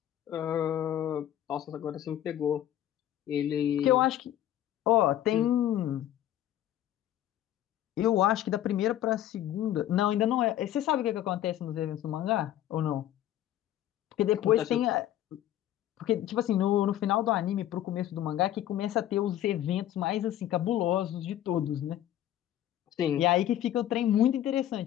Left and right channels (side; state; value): right; quieter; 12.2 dB